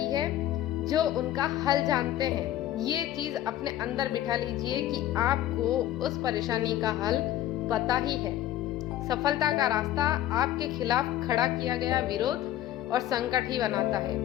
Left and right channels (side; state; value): right; quieter; 13.1 dB